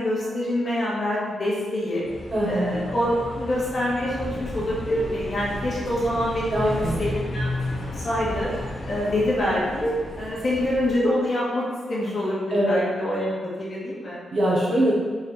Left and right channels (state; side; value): normal; both; correlation 0.83